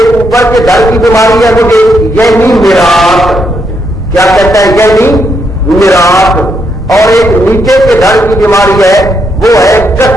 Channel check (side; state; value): both; normal; correlation 0.78